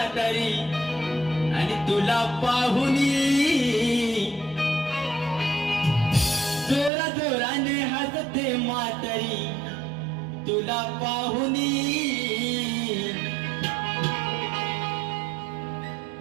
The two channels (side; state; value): left; drops out; at 6.9 s